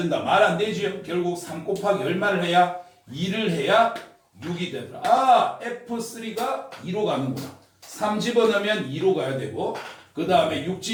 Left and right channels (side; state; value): both; identical; correlation 1.00